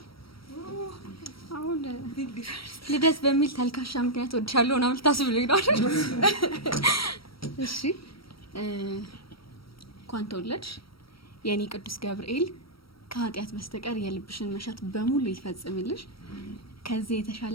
አሁን ልደት በሚል ተልካሻ ምክንያት እወድሻለሁ እና ልታስብልኝ ነው አይደል? እሺ እንኳን ተወለድሽ የኔ ቅዱስ ገብርኤል ከኃጢአት በስተቀር የልብሽን መሻት በሙሉ ይፈጽምልሽ። ከዚህ የተሻለ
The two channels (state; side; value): late; right; 0.75 ms